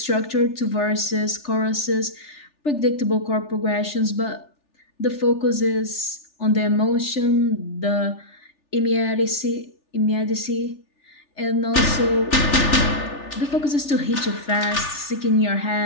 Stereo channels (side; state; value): right; late; 3.4 ms